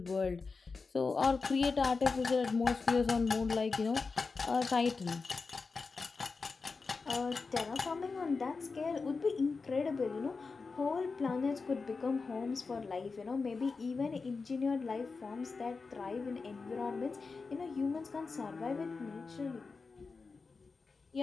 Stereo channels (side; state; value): right; quieter; 4.4 dB